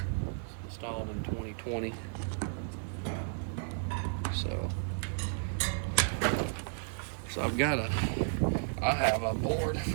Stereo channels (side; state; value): left; silent; digital silence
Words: It's installed in 2020. So I have a board